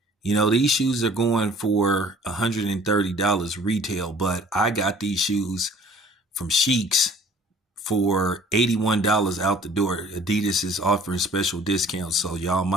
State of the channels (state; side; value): normal; both; correlation 0.53